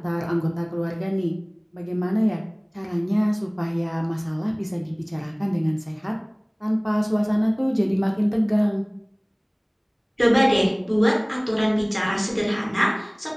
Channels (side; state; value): both; identical; correlation 1.00